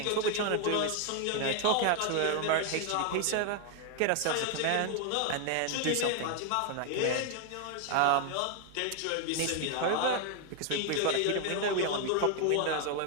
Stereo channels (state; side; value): different; both; correlation 0.00